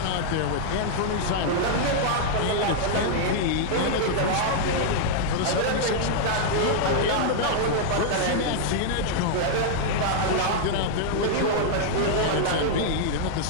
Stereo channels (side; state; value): both; different; correlation -0.01